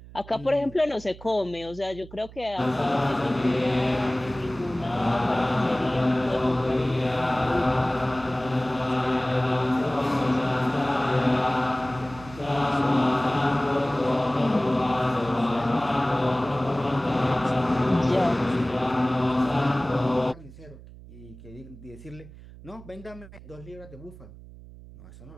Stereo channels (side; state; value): right; noise; hum, 18 dB below the sound